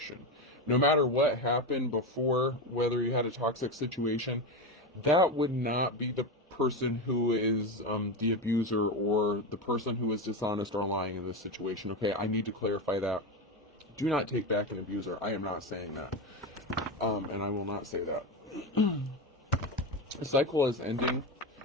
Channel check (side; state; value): both; normal; correlation 0.17